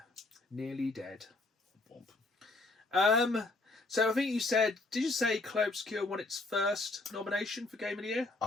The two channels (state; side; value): quieter; right; 3.2 dB